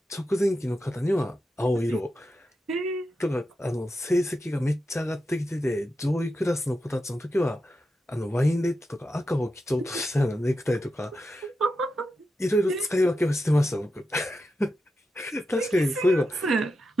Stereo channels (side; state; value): both; normal; correlation 0.89